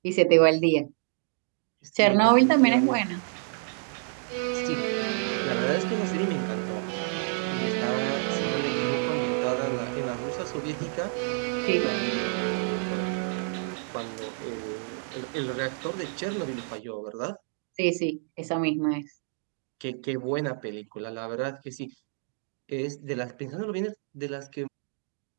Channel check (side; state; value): left; silent; 59 dB below the other